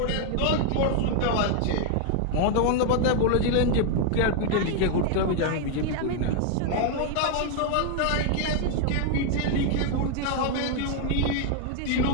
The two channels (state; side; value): different; both; correlation 0.00